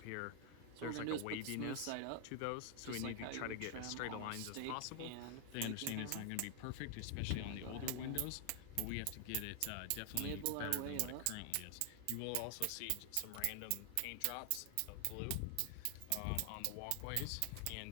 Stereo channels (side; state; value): both; different; correlation 0.00